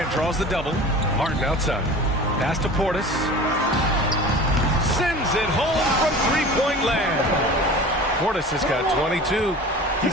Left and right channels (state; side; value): normal; both; correlation 0.38